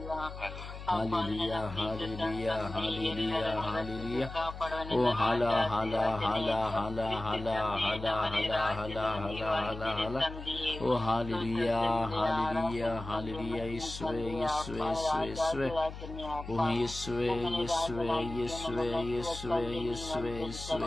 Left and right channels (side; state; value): left; noise; hum, 11 dB below the sound